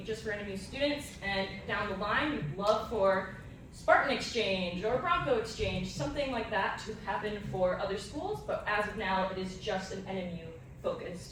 just for NMU students, and down the line, we'd love for Spartan Exchange or Bronco Exchange, something like that to happen for other schools, but as of now, it is just an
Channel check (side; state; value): both; identical; correlation 1.00